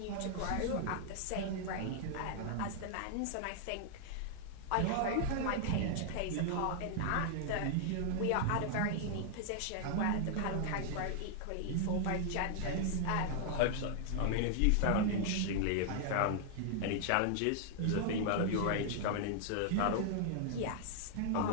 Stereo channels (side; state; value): both; different; correlation 0.00